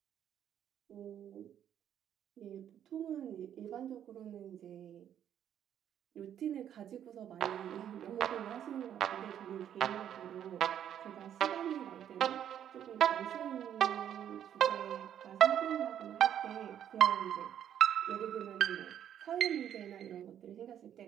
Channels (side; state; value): left; quieter; 9.9 dB